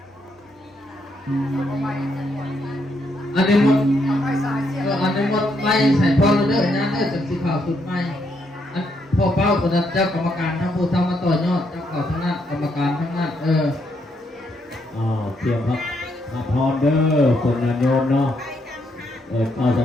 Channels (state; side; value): normal; both; correlation 0.76